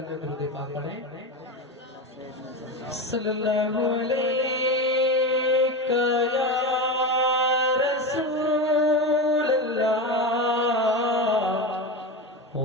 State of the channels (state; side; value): normal; both; correlation 0.20